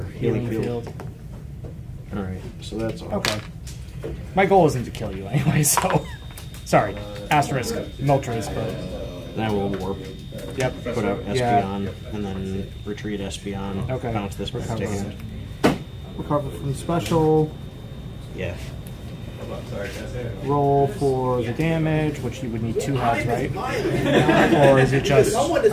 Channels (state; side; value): identical; both; correlation 1.00